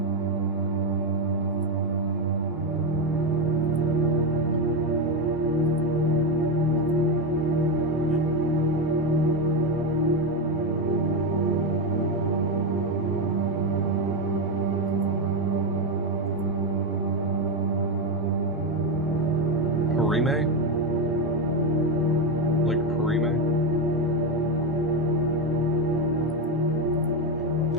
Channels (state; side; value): normal; both; correlation 0.09